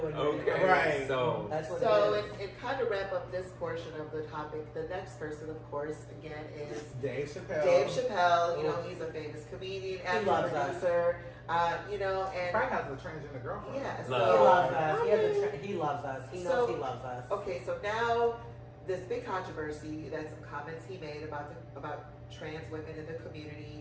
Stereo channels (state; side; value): identical; both; correlation 1.00